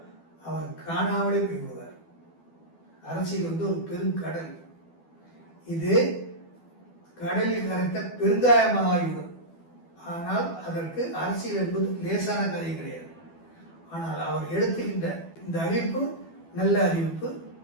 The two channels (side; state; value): right; late; 12 ms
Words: அவர் காணாமலே போய்விடுவார். அரசியல் வந்து ஒரு பெருங்கடல். இது கடலில் கரைத்த பெருங்காயமாகிவிடும். ஆனால் அதற்கு அரசியல் என்பது லேசான காரியம் கிடையாது. ஆனால் அவர் எடுத்துக்கின்ற இந்த அறிவிப்பு நல்ல அறிவிப்பு,